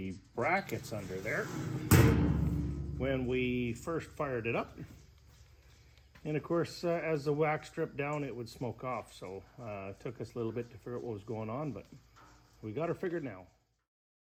brackets under there when we first fired it up. And of course, as the wax dripped down, it would smoke off. So it took us a little bit to figure out what was going on, but we got her figured now.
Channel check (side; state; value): both; identical; correlation 1.00